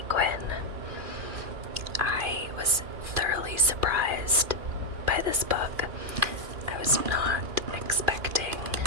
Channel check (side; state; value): left; late; 2.4 ms